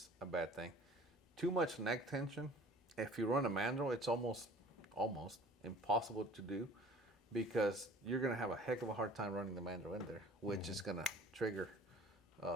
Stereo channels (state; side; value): normal; both; correlation 0.48